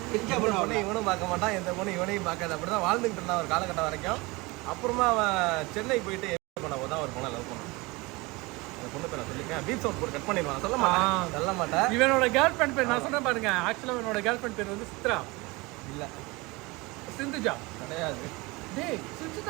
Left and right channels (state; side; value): quieter; left; 24.0 dB